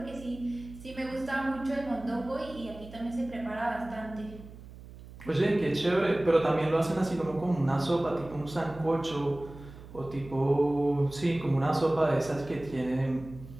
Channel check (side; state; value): right; noise; hum, 17 dB below the sound